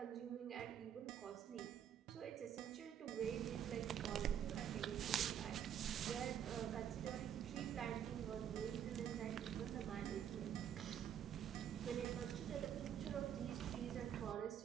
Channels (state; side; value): quieter; left; 9.3 dB